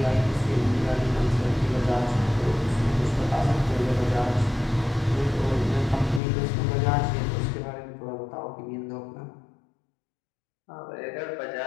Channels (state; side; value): drops out; right; at 6.2 s